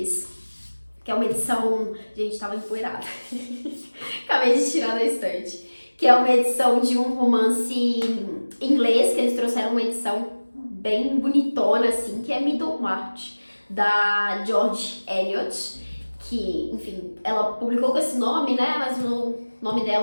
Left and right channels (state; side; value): inverted; both; correlation -1.00